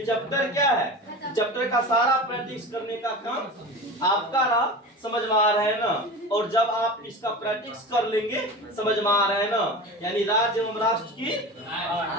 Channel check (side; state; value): both; normal; correlation 0.31